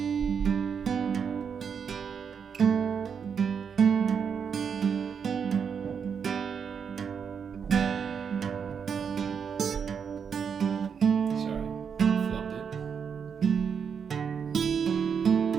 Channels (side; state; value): left; quieter; 6.8 dB